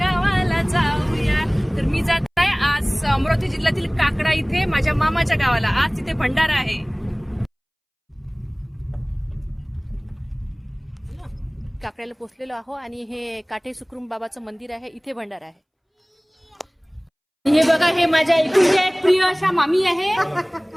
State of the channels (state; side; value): identical; both; correlation 1.00